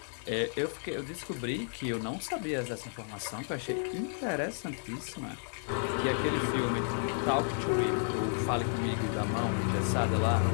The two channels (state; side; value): silent; right; digital silence